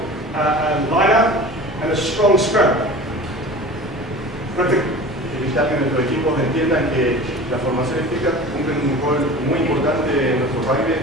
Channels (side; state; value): both; normal; correlation 0.38